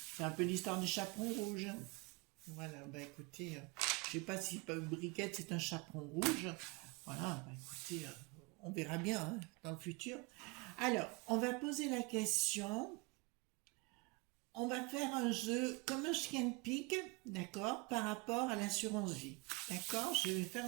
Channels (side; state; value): left; quieter; 27.3 dB